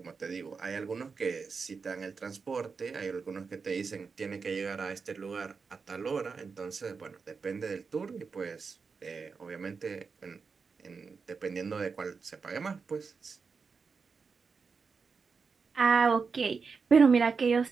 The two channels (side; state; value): left; quieter; 5.1 dB